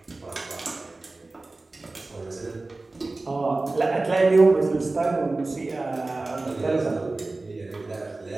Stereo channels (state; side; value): quieter; left; 3.2 dB